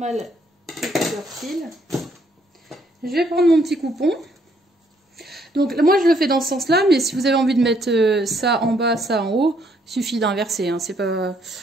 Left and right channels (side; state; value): both; normal; correlation 0.69